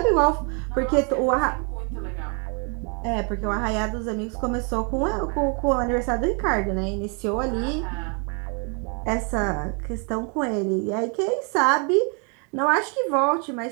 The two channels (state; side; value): quieter; left; 36.9 dB